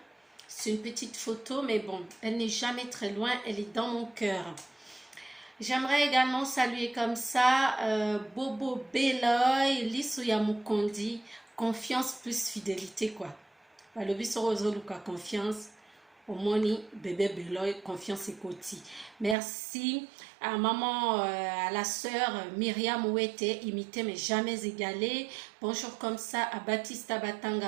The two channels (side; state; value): left; drops out; at 19.4 s